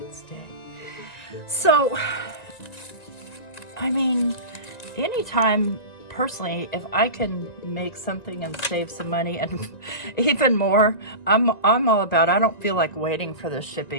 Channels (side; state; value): right; late; 1.9 ms